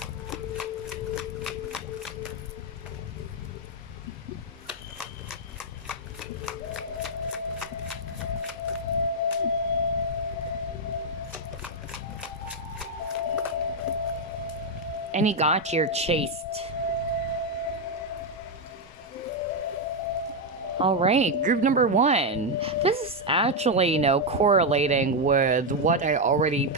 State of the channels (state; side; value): normal; both; correlation 0.02